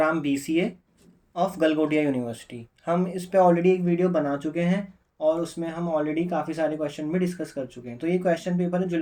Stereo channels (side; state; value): both; identical; correlation 1.00